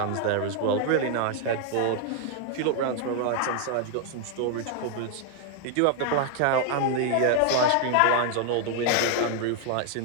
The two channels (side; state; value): both; different; correlation 0.00